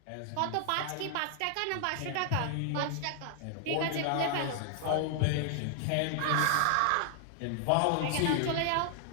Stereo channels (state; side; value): different; both; correlation 0.00